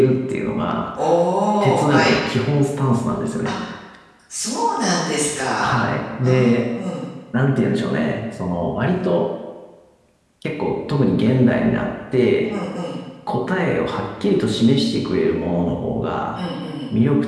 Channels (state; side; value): identical; both; correlation 1.00